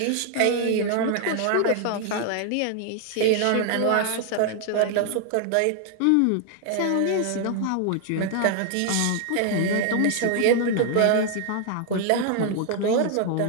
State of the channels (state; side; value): different; both; correlation 0.00